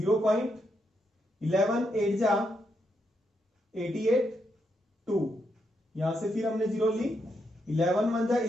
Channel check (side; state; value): both; normal; correlation 0.81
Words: 8 जा 88 2 यहां से फिर हमने 0 ली 11 1 जा